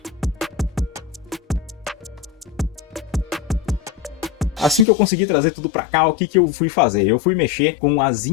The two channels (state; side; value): drops out; right; at 4.9 s